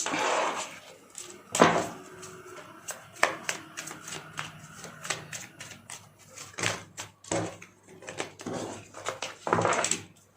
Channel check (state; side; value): identical; both; correlation 1.00